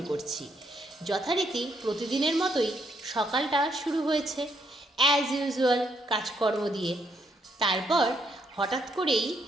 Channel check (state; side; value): normal; both; correlation 0.74